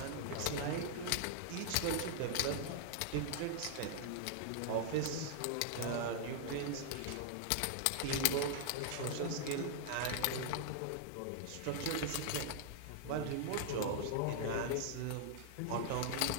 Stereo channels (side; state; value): both; different; correlation 0.00